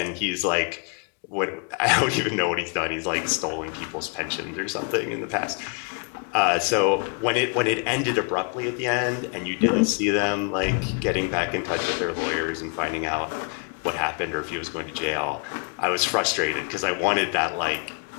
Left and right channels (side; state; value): right; quieter; 38.6 dB